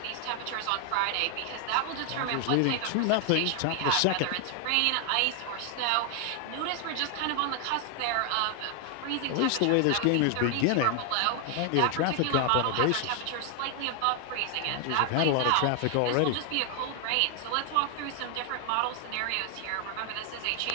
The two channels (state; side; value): different; both; correlation 0.00